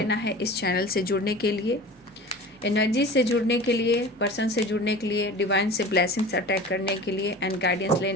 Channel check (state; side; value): normal; both; correlation 0.37